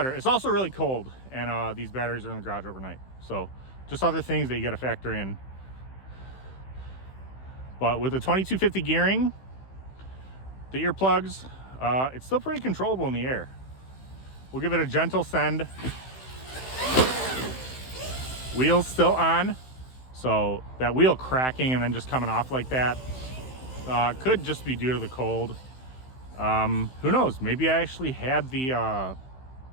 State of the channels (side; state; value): right; late; 15 ms